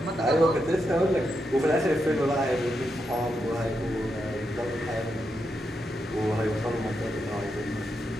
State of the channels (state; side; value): normal; both; correlation 0.84